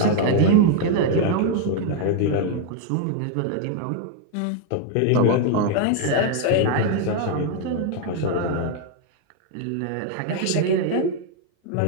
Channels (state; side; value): different; both; correlation 0.00